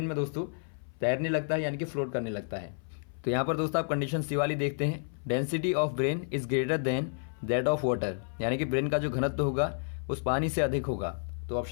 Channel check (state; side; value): silent; right; 56 dB below the other